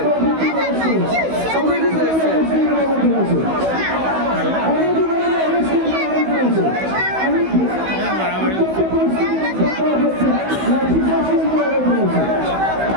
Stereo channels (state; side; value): late; left; 16 ms